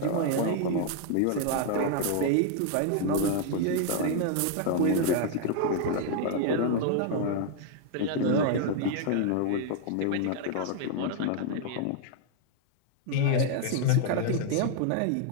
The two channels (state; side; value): different; both; correlation 0.00